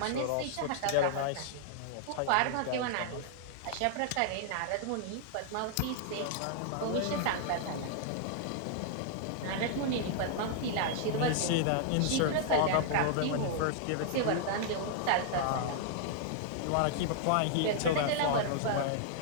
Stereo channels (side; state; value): both; different; correlation -0.01